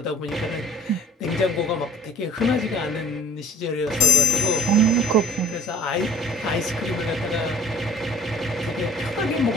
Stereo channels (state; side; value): normal; both; correlation 0.51